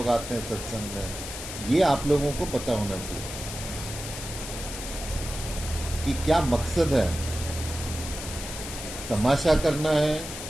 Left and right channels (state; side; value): noise; left; hiss, 8 dB below the sound